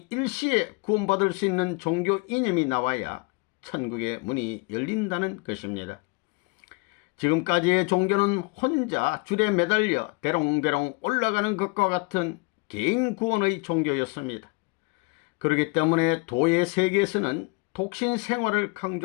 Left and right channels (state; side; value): quieter; right; 29.4 dB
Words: 일시에 구원받을 수 있는 종교 이념이 나와야 천국의 문이 열린다는 것입니다. 지금까지의 종교는 혼자 줄에 매달려 대롱대롱 올라가는 것과 같은 개인 구원의 종교였습니다. 그렇기 때문에 도의 세계에서는 독신 생활을